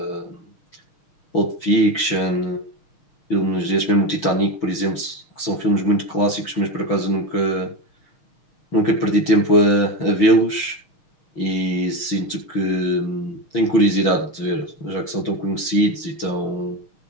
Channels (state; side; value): late; right; 6.1 ms